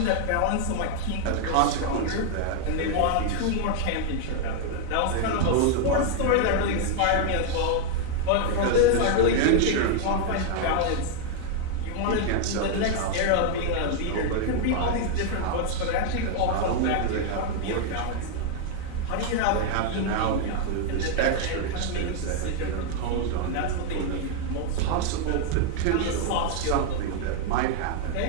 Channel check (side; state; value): both; different; correlation 0.00